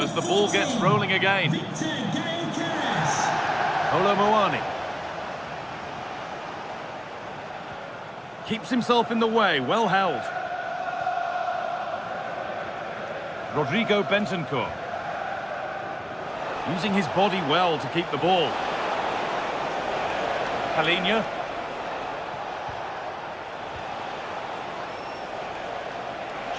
as the ball gets rolling again. Colomboani. Keeps himself in the way, well held. Rodrigo Bentancur. Using his body well to keep the ball. Palhinha.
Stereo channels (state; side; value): identical; both; correlation 1.00